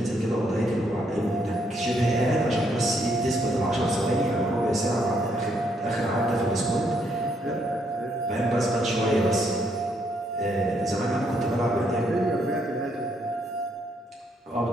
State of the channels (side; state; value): both; normal; correlation 0.73